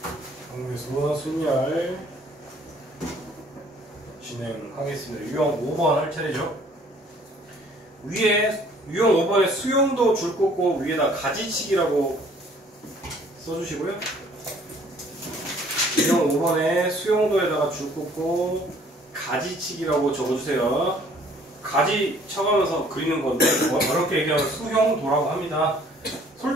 경우의 수와 순열 진행하겠습니다. 유형 5번 할 차례죠. 위에 유형 5번에 수용도 줄 꽂고 위에다 가지치기라고 써주시고요. 유형 5번에 수용도에다가 줄 꽂고 가지치기라고 적어주세요. 가지 쳐가면서 그리는 건데 어렵게 얘기하면 수형도라고 합니다.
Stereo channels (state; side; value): normal; both; correlation 0.58